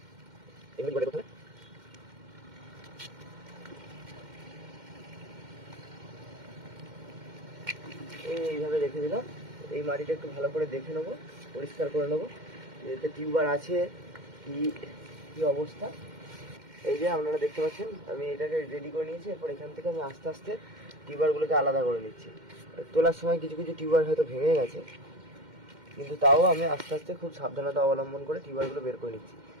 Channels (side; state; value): left; late; 2.1 ms